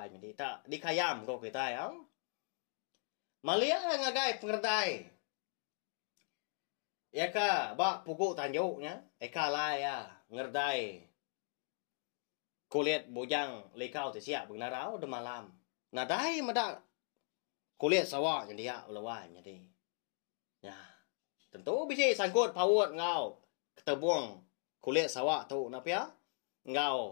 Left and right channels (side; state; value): right; silent; 52 dB below the other